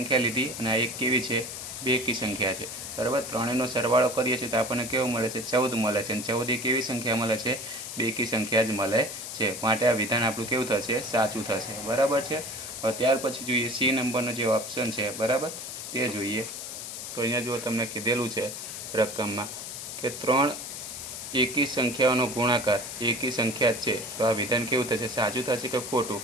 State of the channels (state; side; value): noise; left; hiss, 8 dB below the sound